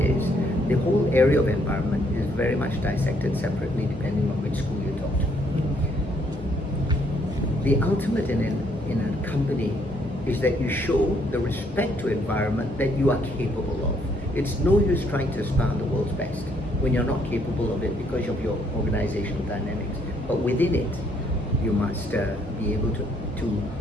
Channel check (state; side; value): normal; both; correlation 0.69